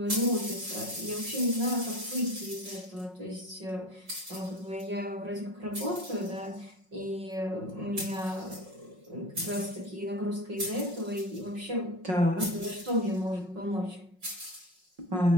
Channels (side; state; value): left; late; 5.5 ms